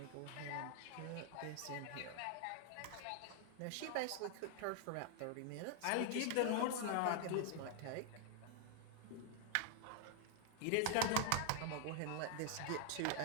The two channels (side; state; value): both; different; correlation 0.00